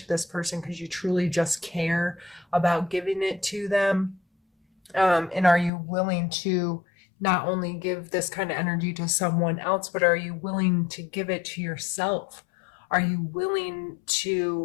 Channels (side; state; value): right; drops out; at 5.7 s